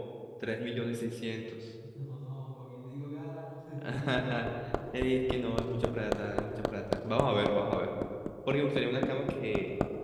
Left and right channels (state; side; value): identical; both; correlation 1.00